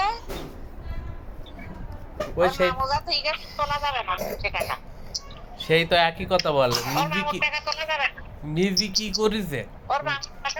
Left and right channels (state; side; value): identical; both; correlation 1.00